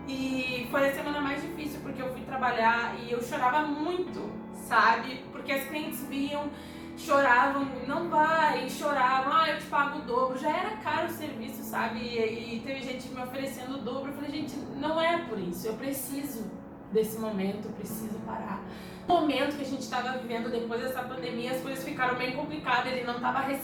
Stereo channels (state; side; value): identical; both; correlation 1.00